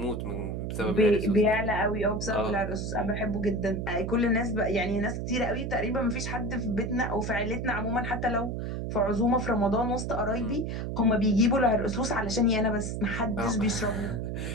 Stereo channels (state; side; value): noise; right; hum, 3 dB below the sound